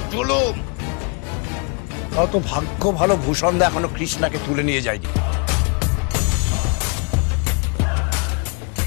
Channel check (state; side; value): quieter; right; 35.9 dB